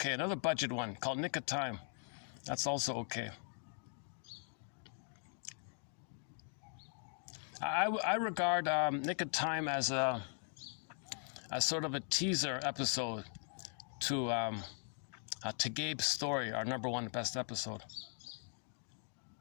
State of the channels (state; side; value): silent; right; 51 dB below the other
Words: Another budget one called Nick of Time. That's also okay. I regard Nick of Time as sort of a teaser episode to Gabe's Story, our number 1 best episode.